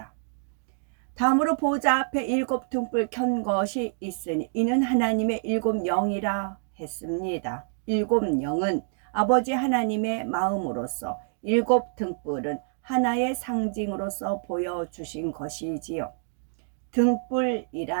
다음으로 보호자 앞에 7 등불 켠 것이 있으니 이는 하나님의 7 영이라 했습니다. 7 영은 아버지 하나님의 마음으로서 7 등불은 하나의 상징으로서 보여주신 것이지요.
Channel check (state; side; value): silent; left; digital silence